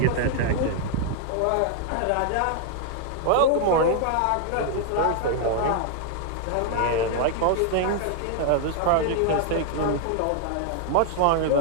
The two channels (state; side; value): different; both; correlation 0.00